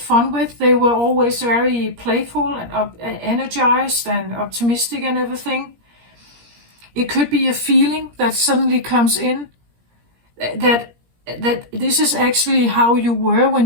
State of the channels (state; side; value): late; left; 17 ms